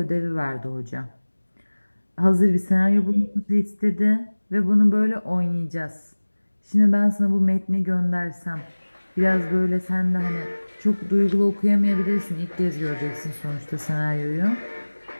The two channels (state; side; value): inverted; both; correlation -1.00